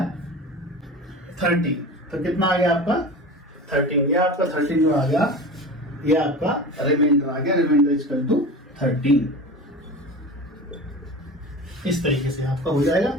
30। तो कितना आ गया आपका? 13। ये आपका 13 जो आ गया, ये आपका रिमाइंडर आ गया। Remainder equal to 13। इस तरीके से आपका हो जाएगा।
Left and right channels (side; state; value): both; normal; correlation 0.32